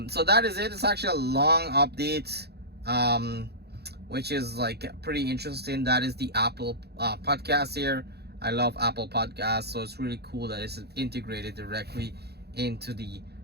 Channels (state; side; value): late; left; 0.47 ms